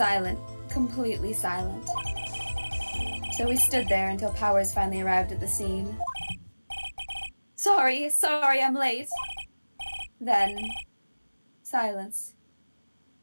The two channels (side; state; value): both; inverted; correlation -1.00